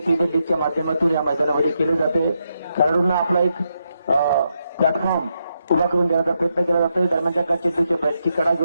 लीगच्या माध्यमातून या मैदानामध्ये केलं जाते. खेळाडूंना आपला एक प्लॅटफॉर्म उभा करून देण्याचा प्रयत्न केला जातोय. दरम्यानच्या का चेंडूच्या बॅटची कडा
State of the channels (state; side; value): inverted; both; correlation -0.82